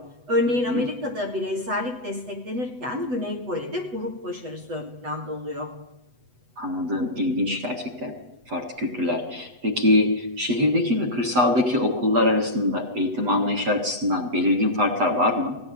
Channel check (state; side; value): late; left; 8.1 ms